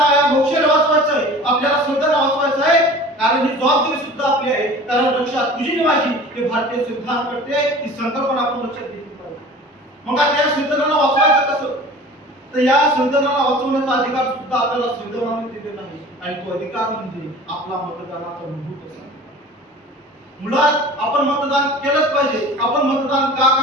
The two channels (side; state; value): both; normal; correlation 0.41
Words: या लोकशाहीला वाचवायचं आहे, आपल्याला संविधान वाचवायचं आहे, कारण ही जबाबदारी सुद्धा आपली आहे. कारण रक्षा तुझी आणि माझी हे भारतीय संविधान करते, ही संकल्पना आपण लक्षात घेतली पाहिजे. मग आता या संविधानाला वाचवायचं कसं, तर या संविधानाला वाचवण्याचा अधिकार सुद्धा आपल्याला संविधानाने दिलेला आहे आणि तो अधिकार म्हणजे आपला मतदानाचा मूलभूत असा. मुळात आपण मतदान केलंच पाहिजे. आपण मतदान का